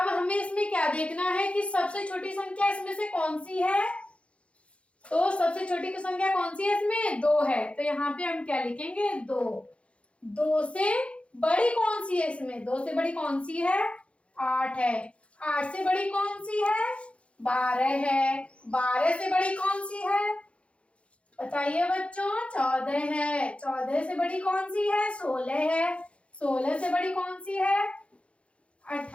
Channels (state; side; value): late; right; 0.061 ms